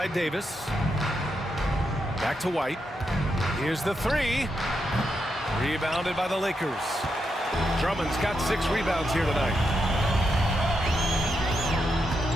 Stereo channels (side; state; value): both; normal; correlation 0.83